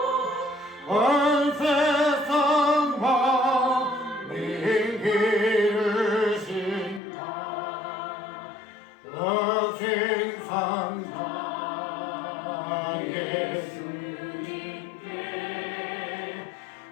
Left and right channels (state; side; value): drops out; right; at 7.0 s